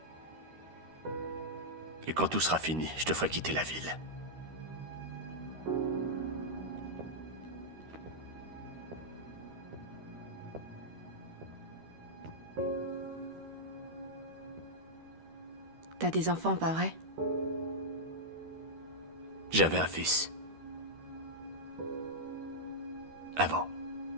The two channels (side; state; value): left; late; 13 ms